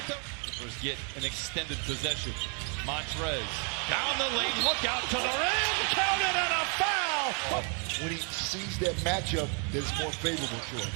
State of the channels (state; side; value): quieter; left; 40.0 dB